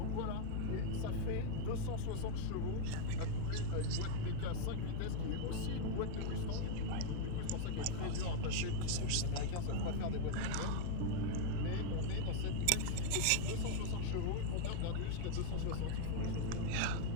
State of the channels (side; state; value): both; different; correlation 0.00